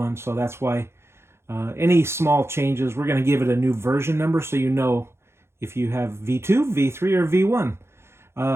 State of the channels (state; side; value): late; left; 0.12 ms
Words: so that's why any small changes, we're going to give it a new version number so you know if you have V2, V3, or